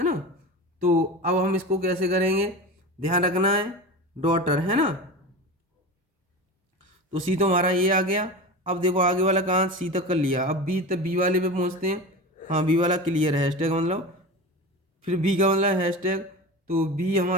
ना। तो अब हम इसको कैसे करेंगे, ध्यान रखना है, डॉटर, है ना। तो सी तो हमारा ये आ गया। अब देखो आगे वाला कहाँ, सी तक कर लिया, अब बी तक, बी वाले पे पहुँचते हैं। हाँ बी वाला क्लियर है, हैशटैग मतलब, फिर बी का मतलब हैशटैग, तो बी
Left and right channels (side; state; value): both; normal; correlation 0.28